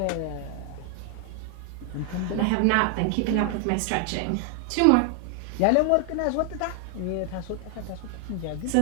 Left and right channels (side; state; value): both; different; correlation 0.00